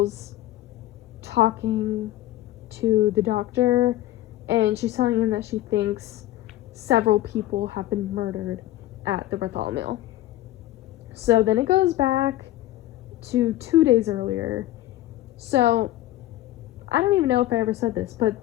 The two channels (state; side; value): quieter; right; 14.9 dB